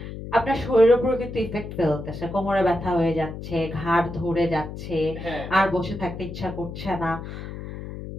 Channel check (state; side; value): noise; left; hum, 9 dB below the sound